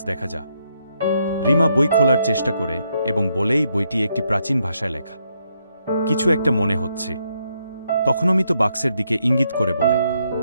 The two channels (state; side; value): inverted; both; correlation -0.77